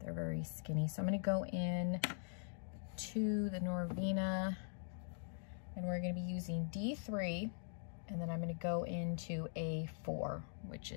very skinny. So I'm going to go in to the Norvina, and we're going to be using D3, and then I'm going to go into A4, which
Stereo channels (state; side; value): silent; right; digital silence